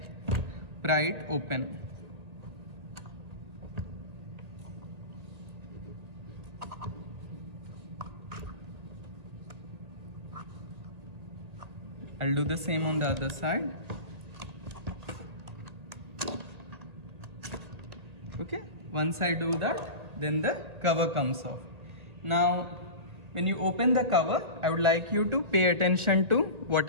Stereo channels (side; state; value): left; late; 1.8 ms